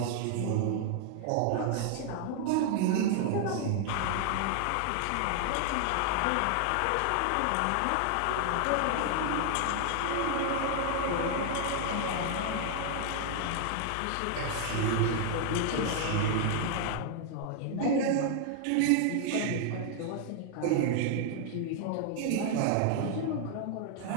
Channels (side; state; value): both; different; correlation 0.00